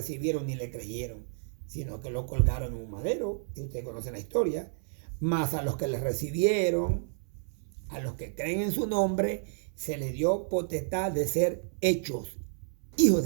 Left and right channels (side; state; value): left; silent; 57 dB below the other